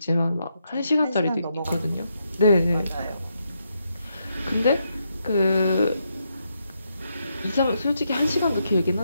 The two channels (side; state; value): both; inverted; correlation -0.80